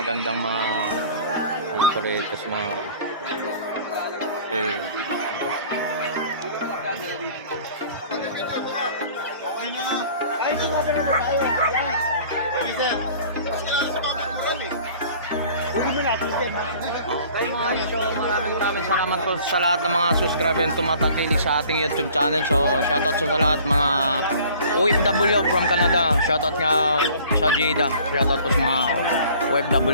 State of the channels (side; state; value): both; inverted; correlation -0.50